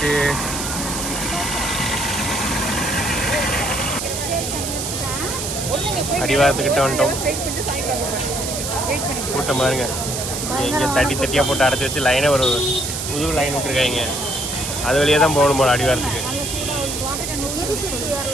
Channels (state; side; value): noise; right; hiss, 4 dB below the sound